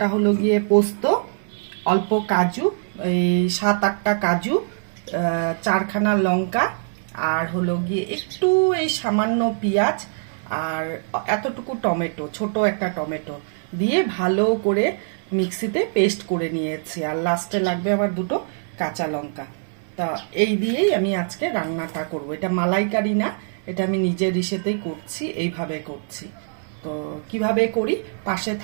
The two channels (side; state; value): left; silent; digital silence